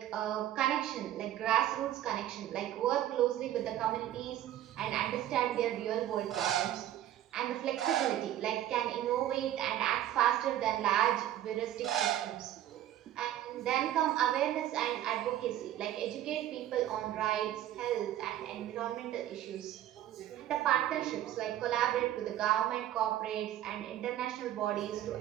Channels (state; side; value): quieter; left; 12.5 dB